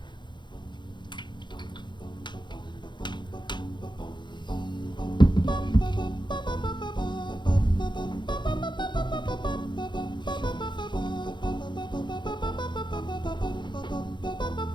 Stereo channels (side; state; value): right; late; 0.22 ms